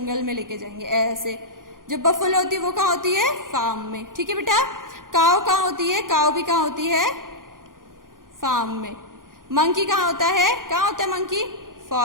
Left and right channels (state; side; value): late; left; 0.90 ms